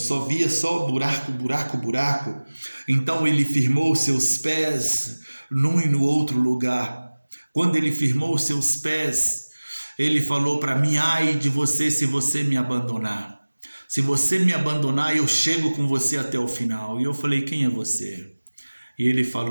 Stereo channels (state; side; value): inverted; both; correlation -1.00